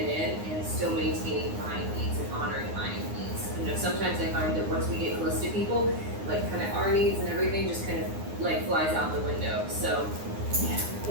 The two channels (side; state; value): left; late; 9.7 ms